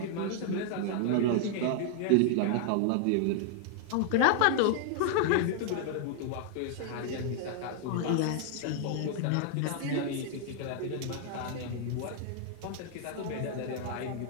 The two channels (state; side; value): different; both; correlation 0.00